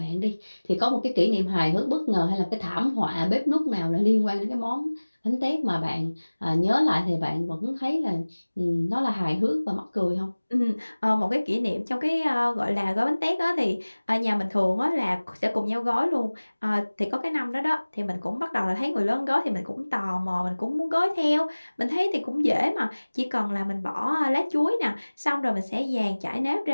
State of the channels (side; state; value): both; inverted; correlation -1.00